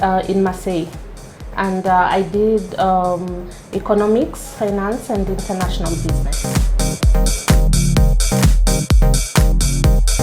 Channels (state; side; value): identical; both; correlation 1.00